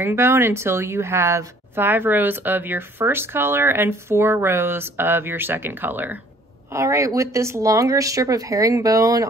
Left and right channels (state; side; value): normal; both; correlation 0.57